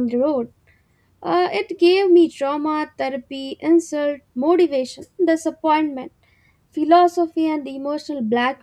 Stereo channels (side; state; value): both; identical; correlation 1.00